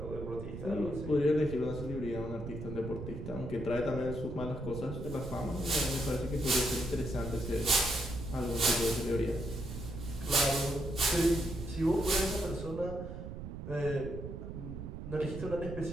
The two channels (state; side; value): noise; right; rumble, 8 dB below the sound